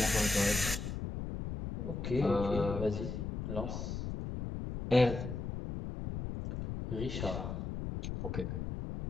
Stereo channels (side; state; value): left; noise; rumble, 4 dB below the sound